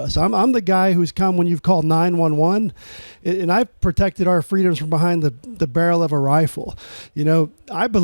I'm the guy who's come when you've called 911, and I've protected our freedoms from behind the barrel of a rifle. You know, I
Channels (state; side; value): inverted; both; correlation -1.00